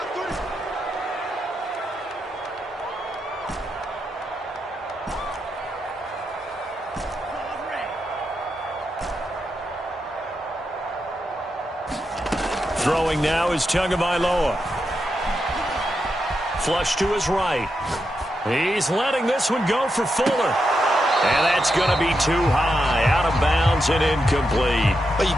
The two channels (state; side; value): normal; both; correlation 0.85